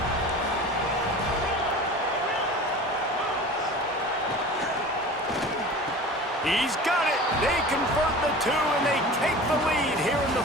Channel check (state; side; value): normal; both; correlation 0.37